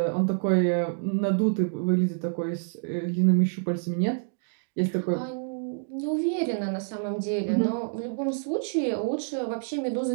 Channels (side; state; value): left; silent; digital silence